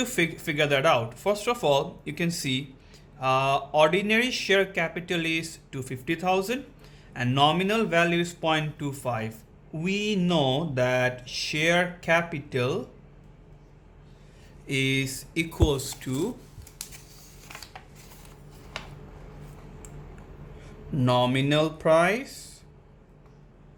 figure that out. First of all, you can see ordinary share capital is 250,000 and nominal value is 0.25. We know that share capital is equals to nominal price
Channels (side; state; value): both; identical; correlation 1.00